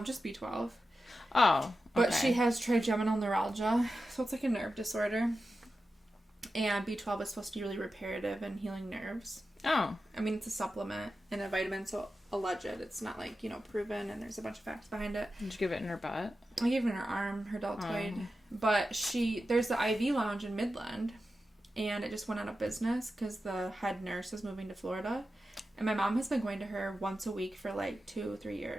Just B12. Oh, okay. But she has trigeminal neuralgia, so it's like a nerve disorder. And B12 is supposed to be really reparative and healing nerves. Oh. I mean, it's a supplement and a vitamin, so alleged. It's not like, you know, proven, and there's a bunch of facts behind it. Did you give it in her butt? I gave it in her arm, her deltoid. But there's the IV lounge in Midland. And it just went out of business because the head nurse is moving to Florida. And my mom has been going to her once a week for like 2-3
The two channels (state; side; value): normal; both; correlation 0.91